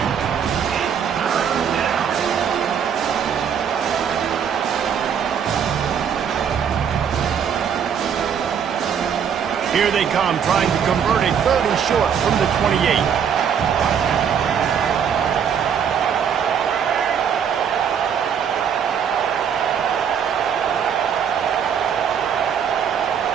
Here they come, trying to convert a 3rd and short from the 28.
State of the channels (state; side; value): quieter; left; 7.7 dB